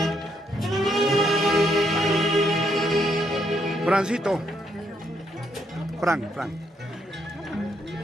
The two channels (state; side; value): normal; both; correlation 0.75